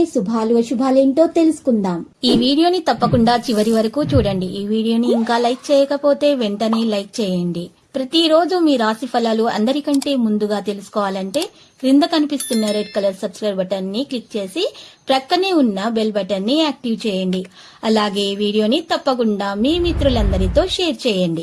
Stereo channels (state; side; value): identical; both; correlation 1.00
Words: శుభాలు అశుభాలేంటో తెలుసుకుందాం. ఈ వీడియోని తప్పకుండా చివరి వరకు చూడండి. ఈ వీడియోని ఇంకా లైక్ చేయకపోతే వెంటనే లైక్ చేయండి. ప్రతిరోజు మీ రాశి ఫలాలు అందరికంటే ముందుగా తెలుసుకోవాలంటే క్రింద కనిపిస్తున్న రెడ్ కలర్ సబ్స్క్రైబ్ బటన్ ని క్లిక్ చేసి ప్రక్కనే ఉన్న బెల్ బటన్ ని యాక్టివ్ చేయండి. అలాగే వీడియోని తప్పకుండా మీ మిత్రులందరితో షేర్